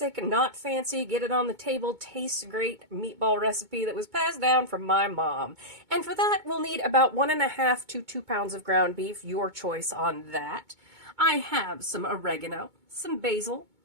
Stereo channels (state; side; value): late; left; 2.2 ms